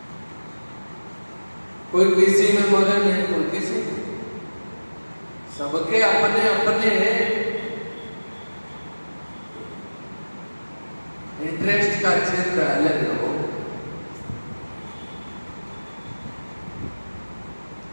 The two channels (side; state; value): both; inverted; correlation -1.00